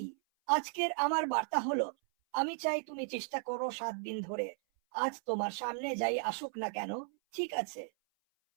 আজকের আমার বার্তা হলো, আমি চাই তুমি চেষ্টা করো 7 দিন ধরে। আজ তোমার সামনে যাই আসুক না কেন, ঠিক আছে।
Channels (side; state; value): left; silent; 54 dB below the other